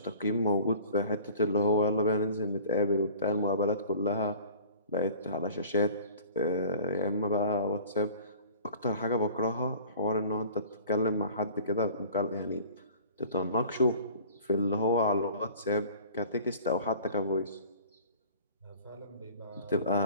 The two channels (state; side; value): inverted; both; correlation -0.45